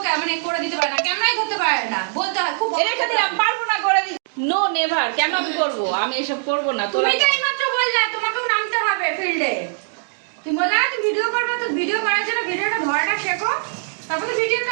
মানে করে দিতে পারে না, ক্যামেরাই ধরতে পারে না, বলতে হয় খুব রেখে দিলাম, পারবো না, করে দিই। নো নেভার, কেন আমি করবো? আমি এসব করবো না। তুমি তো এইমাত্র বললা তোমাকেও নামতে হবে ফিল্ডে। তুমি বললা তুমি ভিডিও করবে, তো ভিডিও করার জন্য ভিডিওটা ধরাটা শেখো, তারপর তো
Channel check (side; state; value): left; silent; digital silence